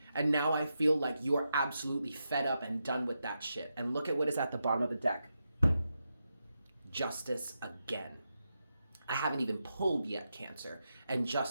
And now I feel like you are absolutely fed up and done with that shit. And look at what is at the bottom of the deck. Justice again. I haven't even pulled yet, Cancer, and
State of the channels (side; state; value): both; inverted; correlation -0.87